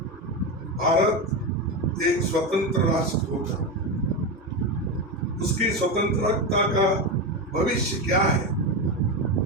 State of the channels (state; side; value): normal; both; correlation 0.15